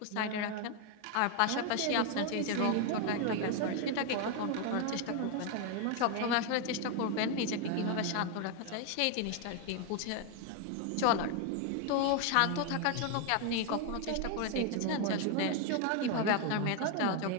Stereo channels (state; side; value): different; both; correlation 0.01